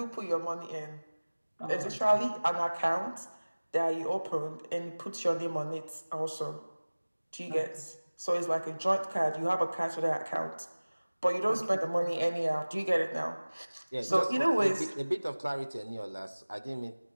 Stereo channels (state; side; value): inverted; both; correlation -1.00